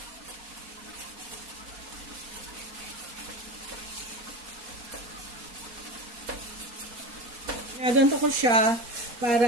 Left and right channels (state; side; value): late; left; 4.2 ms